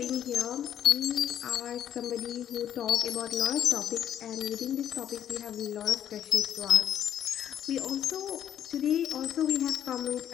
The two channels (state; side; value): quieter; right; 10.2 dB